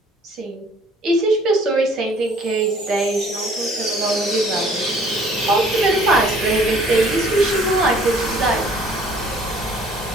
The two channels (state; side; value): normal; both; correlation 0.56